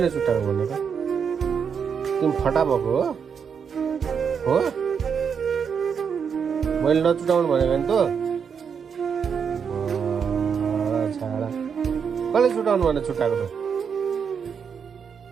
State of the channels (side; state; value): left; quieter; 6.7 dB